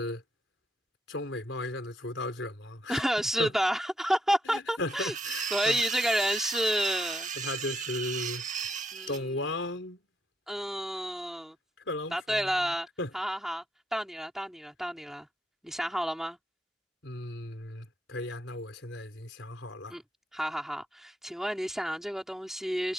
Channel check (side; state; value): both; normal; correlation 0.77